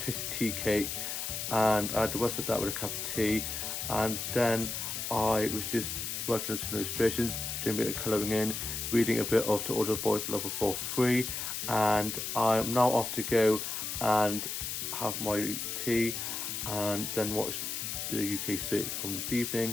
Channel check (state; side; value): noise; left; hiss, 4 dB below the sound